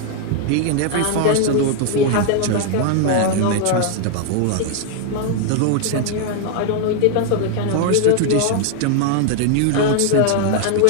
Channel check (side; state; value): both; different; correlation 0.00